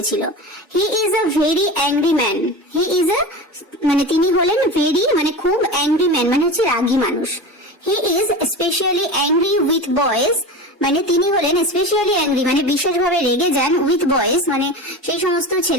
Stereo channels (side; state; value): both; normal; correlation 0.29